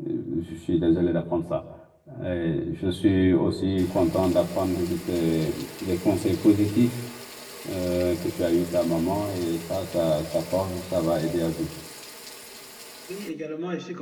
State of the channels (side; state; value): both; identical; correlation 1.00